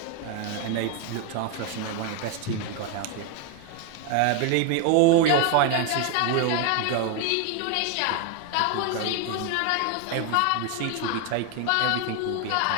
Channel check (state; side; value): different; both; correlation 0.01